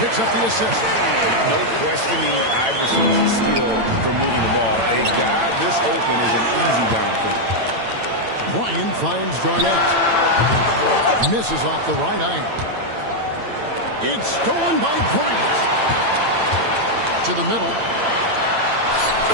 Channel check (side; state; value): left; late; 8.9 ms